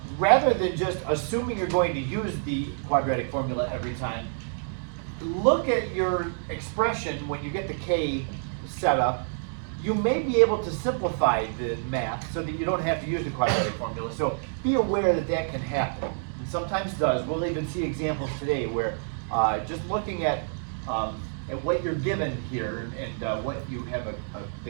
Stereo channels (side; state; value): left; silent; 60 dB below the other